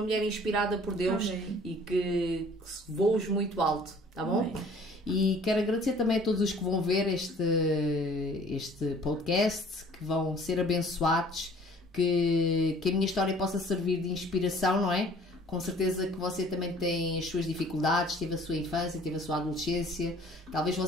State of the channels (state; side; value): normal; both; correlation 0.53